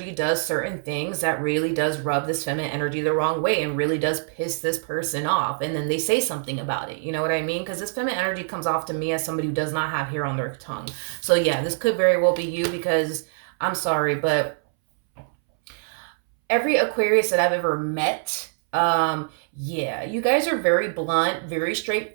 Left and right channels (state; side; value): silent; left; 62 dB below the other